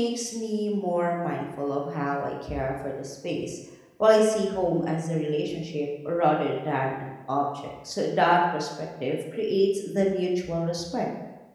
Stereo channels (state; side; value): identical; both; correlation 1.00